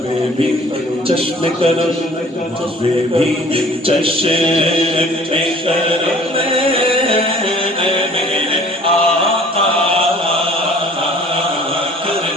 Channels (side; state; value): both; normal; correlation 0.52